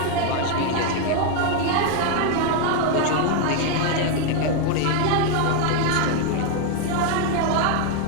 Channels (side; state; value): both; different; correlation 0.01